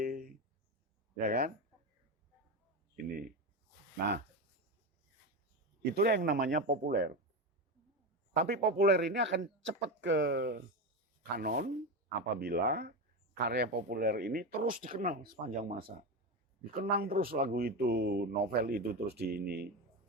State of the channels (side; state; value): both; normal; correlation 0.17